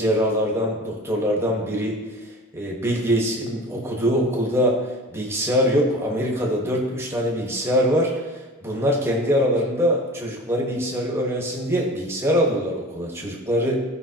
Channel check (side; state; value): both; normal; correlation 0.39